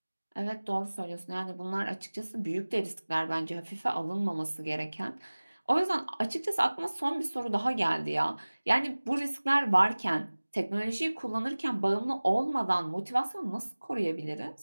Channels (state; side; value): inverted; both; correlation -1.00